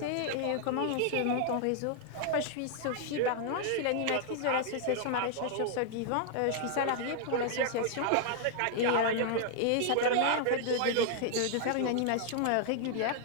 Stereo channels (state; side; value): different; both; correlation 0.00